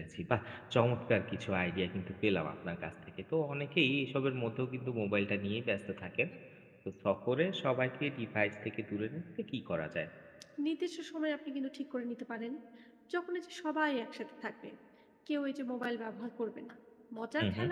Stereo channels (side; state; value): both; identical; correlation 1.00